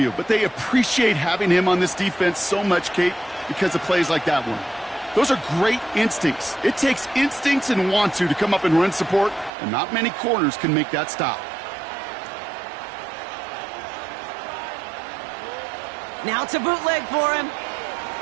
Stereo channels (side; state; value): left; drops out; at 9.5 s